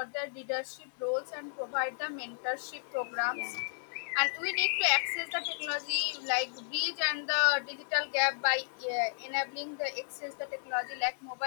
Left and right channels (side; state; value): right; silent; digital silence